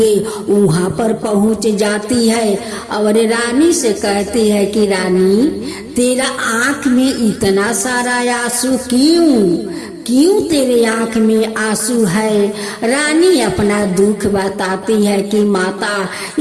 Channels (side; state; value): both; identical; correlation 1.00